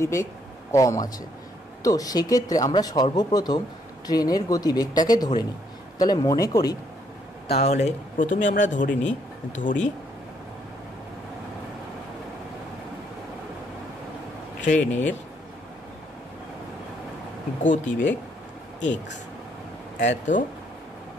কম আছে। তো সেক্ষেত্রে আমরা সর্বপ্রথম ট্রেনের গতিবেগটাকে ধরে নিই। তাহলে মনে করি, তাহলে প্রথমে আমরা ধরি ট্রেনের গতিবেগ এক্স, এত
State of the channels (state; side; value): normal; both; correlation 0.70